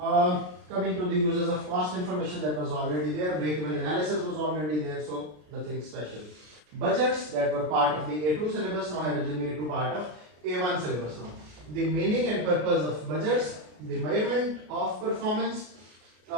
Coming to the uses of cost information, that was already there. Break-even analysis was already there, so nothing special. Budgets that were part of the A2 syllabus now have been made to part of A1 syllabus now. The meaning and purpose of budgets, the measurement of performance,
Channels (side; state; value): left; late; 33 ms